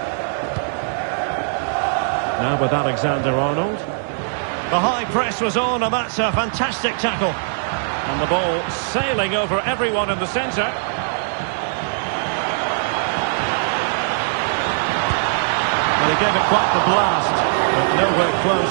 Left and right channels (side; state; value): left; silent; digital silence